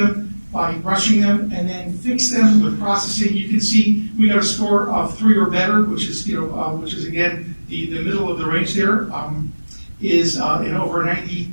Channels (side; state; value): both; inverted; correlation -1.00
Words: by brushing them and then fixed them with processing. You can see we got a score of 3 or better, which is again the middle of the range there, is in over